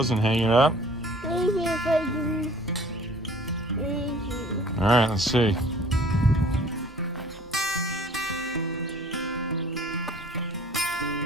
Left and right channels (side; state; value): both; normal; correlation 0.51